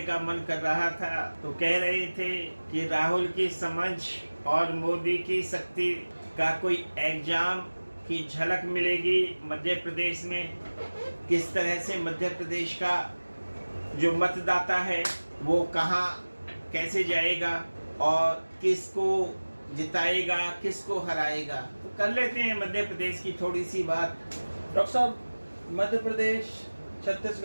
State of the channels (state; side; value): inverted; both; correlation -1.00